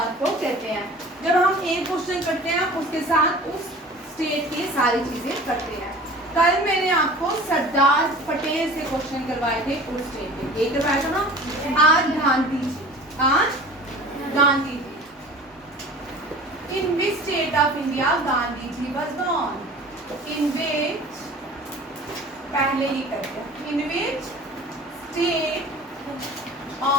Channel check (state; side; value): normal; both; correlation 0.42